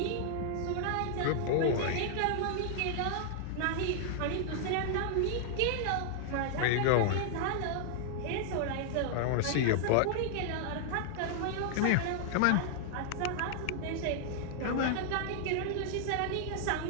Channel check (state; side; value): different; both; correlation -0.01